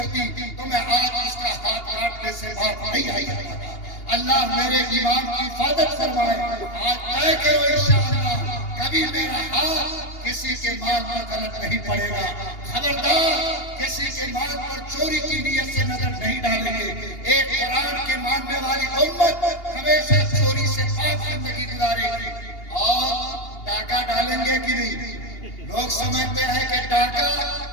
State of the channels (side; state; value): right; late; 2.8 ms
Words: تو میں آج اس کا ہاتھ کاٹنے سے باز نہیں آئی ہوتا. اللہ میرے ایمان کی حفاظت فرمائے. آج طے کرو انشاءاللہ کبھی میرا ہاتھ کسی کے مال پر غلط نہیں پڑے گا. خبردار کسی کے مال پر چوری کی نیت سے نظر نہیں ڈالیں گے. ایک قرآن کے ماننے والی امت ہمیشہ چوری سے پاک زندگی گزارے گی. اور ڈاکہ ڈالیں گے کہ نہیں؟ لوگ سمجھتے ہیں کہ ڈاکہ